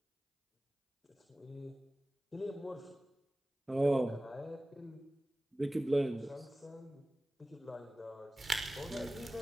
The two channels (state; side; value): normal; both; correlation 0.97